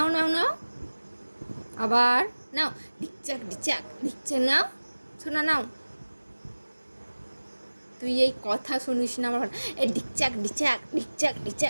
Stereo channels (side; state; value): both; inverted; correlation -1.00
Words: নাও নাও আবার নাও, ডিকচাক ডিচাক ডিকচাক, নাও শোনা নাও। তুই এই কথা শুনিস না আমার, এই ডিকচাক ডিচাক ডিকচাক